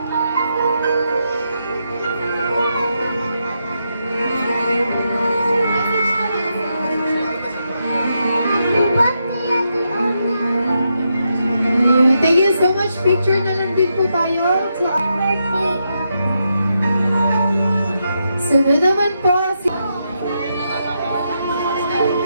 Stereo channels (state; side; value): inverted; both; correlation -0.83